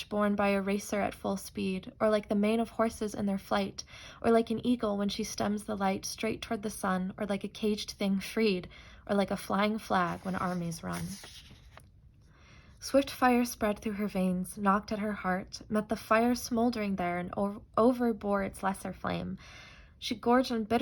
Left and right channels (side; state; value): both; identical; correlation 1.00